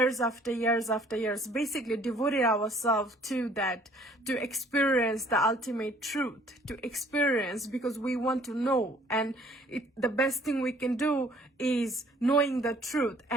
after years, basically devoted ourselves to that, to experience the ultimate truth, to experience, because we want to know. And the best thing we can do is knowing the truth,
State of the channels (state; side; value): normal; both; correlation 0.57